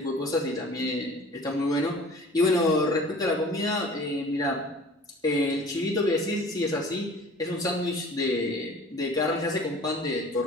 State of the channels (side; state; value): both; normal; correlation 0.45